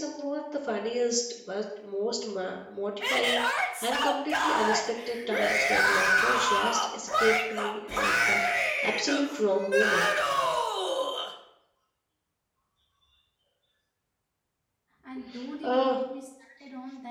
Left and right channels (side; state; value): both; identical; correlation 1.00